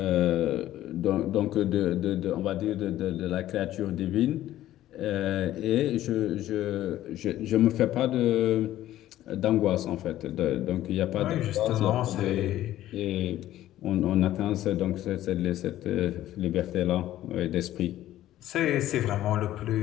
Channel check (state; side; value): quieter; right; 13.7 dB